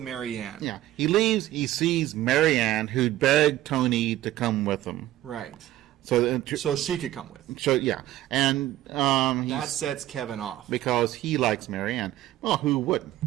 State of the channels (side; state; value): left; quieter; 14.6 dB